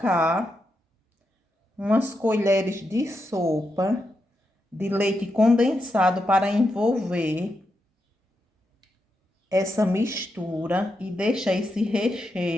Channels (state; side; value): normal; both; correlation 0.85